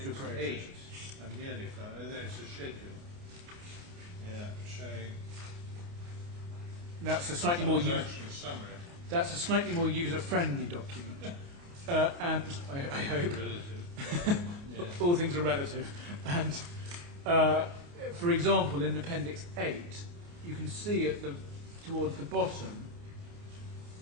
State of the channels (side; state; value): left; late; 29 ms